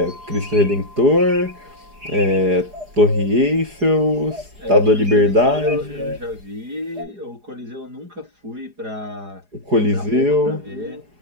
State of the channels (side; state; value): left; late; 4.8 ms